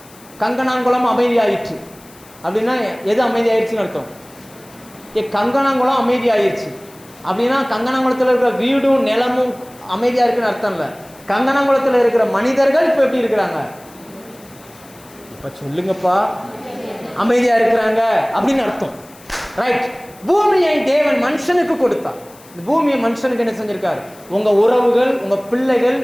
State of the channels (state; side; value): noise; left; hiss, 24 dB below the sound